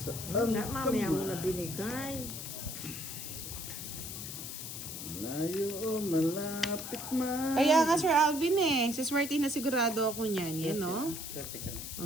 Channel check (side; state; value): left; noise; hiss, 7 dB below the sound